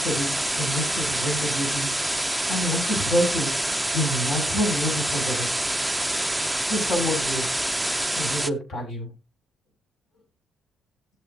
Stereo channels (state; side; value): normal; both; correlation 0.81